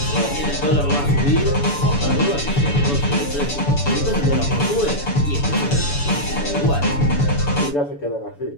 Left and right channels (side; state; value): right; late; 7.0 ms